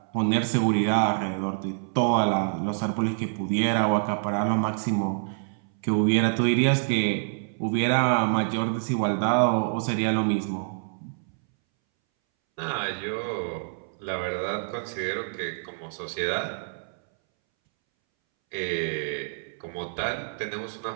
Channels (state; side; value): silent; left; 60 dB below the other